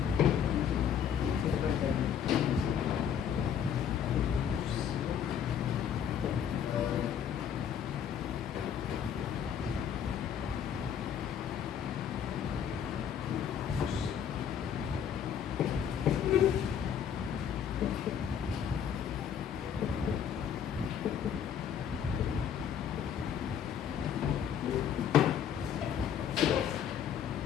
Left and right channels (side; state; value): right; quieter; 8.5 dB